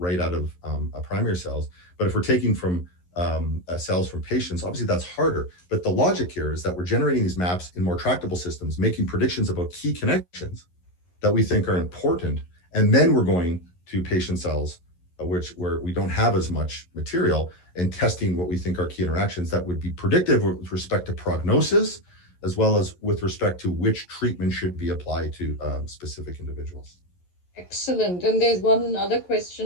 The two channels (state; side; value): late; right; 11 ms